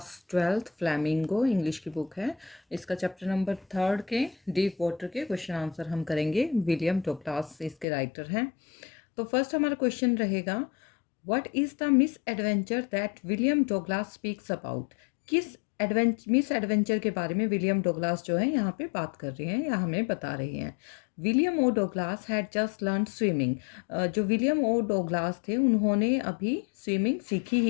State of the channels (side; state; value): right; drops out; at 7.9 s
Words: 12th फ्लैमिंगो इंग्लिश की बुक है। इसका चैप्टर नंबर 3 के डीप वाटर के क्वेश्चन आंसर हम करेंगे। विलियम डगलास इसके राइटर हैं। तो फर्स्ट हमारा क्वेश्चन रहेगा, what is the miss adventure that William Douglas speaks about. किस मिस एडवेंचर के बारे में विलियम डगलास जो है यहाँ पे बात कर रहे हैं या हमें बता रहे हैं। William O Douglas had just learn swimming. जो विलियम ओ डगलास थे उन्होंने अभी स्विमिंग सीखी